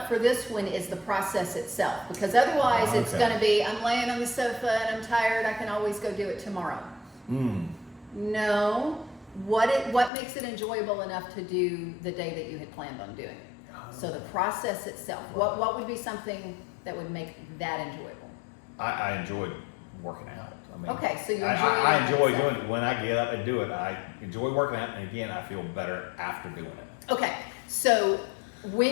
for this one is the process itself, because otherwise it's going to be, I'm laying on the sofa and I'm tired, I can always go do it tomorrow. No, what makes it enjoyable enough to do the day that you had planned on doing it? So the process itself, what would be something that would make that enjoyable? I enjoyed working out. I mean, okay, so you enjoy I enjoy doing it. When I get up and do it, I enjoy working out, and again, I feel better after doing it. Okay, so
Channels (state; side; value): drops out; right; at 10.1 s